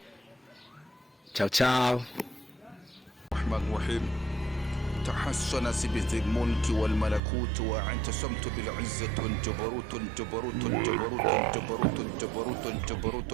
Ciao ciao. تحسن بذي الملك والملكوت واعتصمت بالعزة والجبروت الجبروت الجبروت الجبروت الجبروت الجبروت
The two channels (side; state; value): left; drops out; at 7.2 s